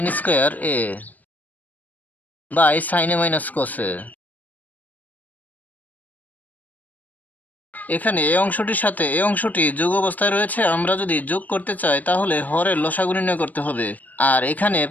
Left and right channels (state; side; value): late; right; 0.080 ms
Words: square a by সাইনে minus কসে। এখানে এই অংশটির সাথে এই অংশটি যোগ অবস্থায় রয়েছে, আমরা যদি যোগ করতে চাই তাহলে হরের লসাগু নির্ণয় করতে হবে। আর এখানে